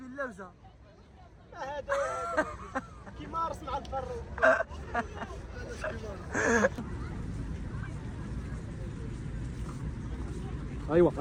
اللوزه. هذا كيما رسم على البر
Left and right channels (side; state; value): both; identical; correlation 1.00